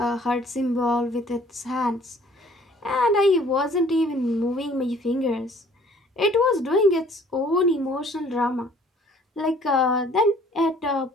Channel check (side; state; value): both; normal; correlation 0.56